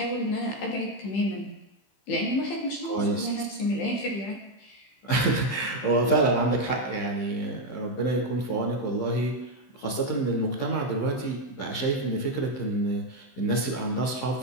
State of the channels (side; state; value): right; late; 15 ms